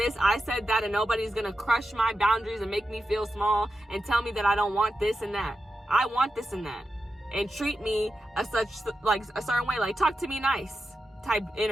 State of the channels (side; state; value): both; normal; correlation 0.90